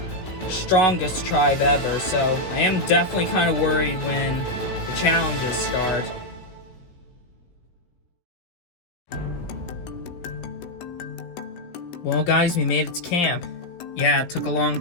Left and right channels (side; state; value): right; late; 16 ms